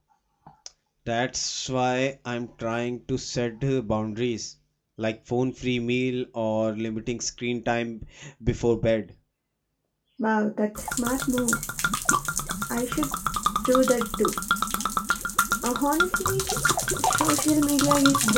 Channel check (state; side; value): identical; both; correlation 1.00